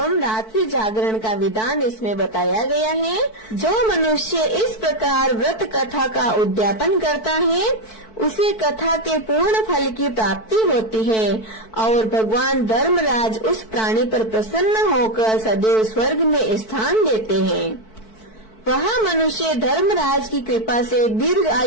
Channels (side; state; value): right; late; 4.6 ms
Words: रात्रि जागरण का विधान इसमें बताया गया है। जो मनुष्य इस प्रकार व्रत कथा का उद्यापन करता है उसे कथा के पूर्ण फल की प्राप्ति होती है और भगवान धर्मराज उस प्राणी पर प्रसन्न होकर सदैव स्वर्ग में स्थान देते हैं। वह मनुष्य धर्मराज की कृपा से दीर्घ